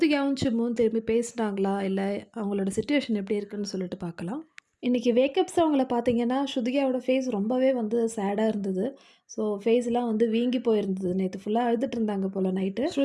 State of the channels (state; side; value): identical; both; correlation 1.00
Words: சிம்புவும் திரும்பி பேசுனாங்களா? இல்ல அவங்களோட சிட்யூவேஷன் எப்படி இருக்குன்னு சொல்லிட்டு பார்க்கலாம். இன்னைக்கு வேக்கப் சாங்ல பார்த்தீங்கன்னா, ஸ்ருதிகாவோட ஃபேஸ் ரொம்பவே வந்து சேடா இருந்தது. ஸோ ஃபேஸ்லாம் வந்து வீங்கி போயிருந்தது. நேத்து ஃபுல்லா அழுதுட்டு இருந்தாங்க போல நைட்டு.